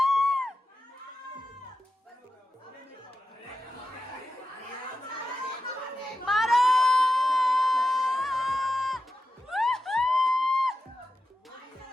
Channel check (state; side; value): normal; both; correlation 0.91